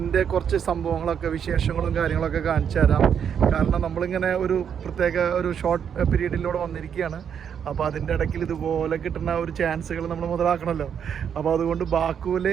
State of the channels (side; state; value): left; quieter; 8.0 dB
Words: കുറച്ച് സംഭവങ്ങളൊക്കെ, വിശേഷങ്ങളും കാര്യങ്ങളൊക്കെ കാണിച്ചു തരാം. കാരണം നമ്മളിങ്ങനെ ഒരു പ്രത്യേക ഒരു ഷോർട്ട് പീരീഡിലൂടെ വന്നിരിക്കുകയാണ്. അപ്പോൾ അതിൻ്റെ ഇടയ്ക്ക് ഇതുപോലെ കിട്ടുന്ന ഒരു ചാൻസുകൾ നമ്മൾ മുതലാക്കണമല്ലോ. അപ്പോൾ അതുകൊണ്ട് ബാക്കുവിൽ